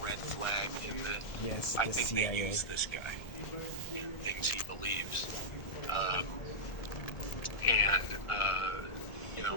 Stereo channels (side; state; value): right; late; 1.5 ms